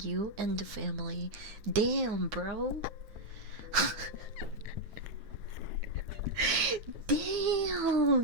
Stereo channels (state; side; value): late; left; 9.2 ms